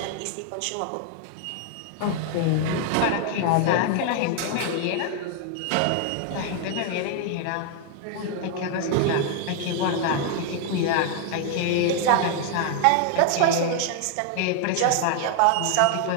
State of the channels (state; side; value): different; both; correlation 0.00